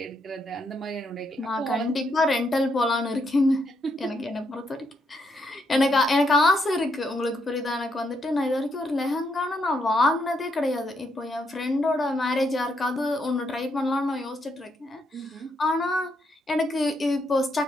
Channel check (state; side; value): normal; both; correlation 0.77